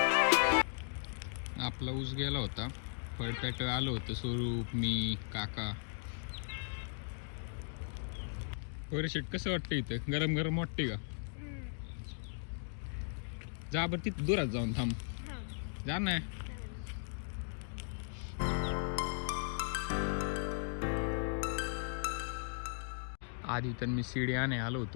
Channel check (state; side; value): silent; right; digital silence